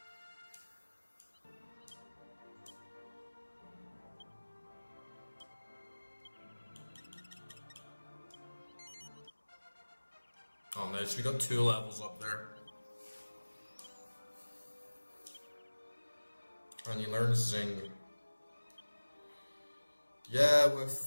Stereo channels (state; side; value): inverted; both; correlation -1.00